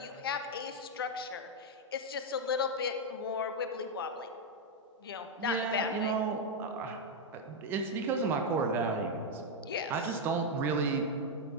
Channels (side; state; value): both; normal; correlation 0.01